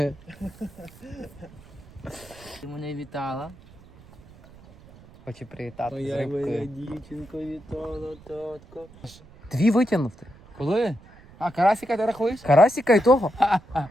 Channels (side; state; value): right; noise; rumble, 23 dB below the sound